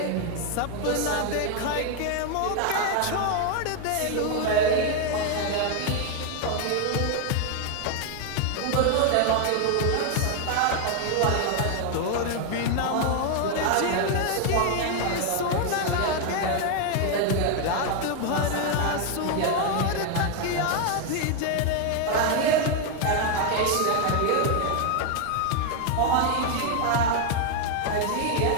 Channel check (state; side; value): different; both; correlation 0.01